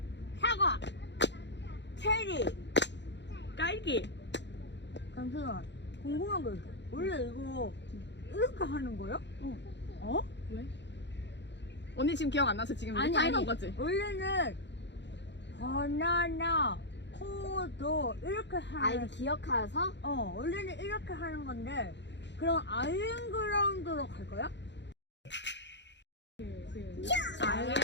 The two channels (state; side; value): late; right; 0.52 ms